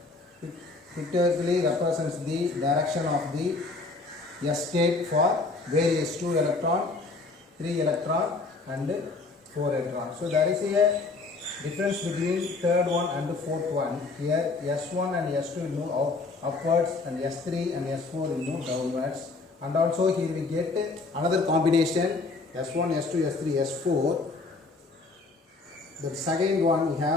pictorially represents the direction of the S state for various 2 electron, 3 electron and 4 electron. So there is a difference between third one and the fourth one. Here S1 and S2 will move upwards and S3 and S4 will move downwards. And also here we get another combination S1, S2, S3, S4. The second one we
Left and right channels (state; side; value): quieter; right; 3.7 dB